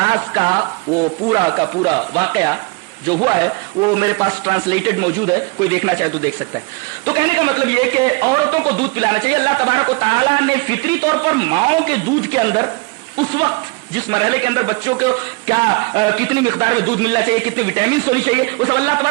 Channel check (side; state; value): left; quieter; 28.1 dB